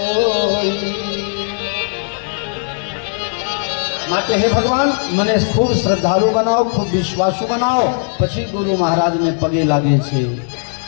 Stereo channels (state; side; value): silent; right; 56 dB below the other